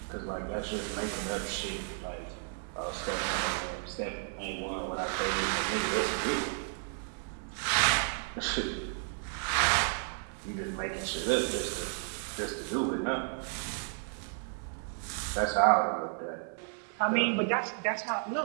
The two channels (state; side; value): silent; left; 56 dB below the other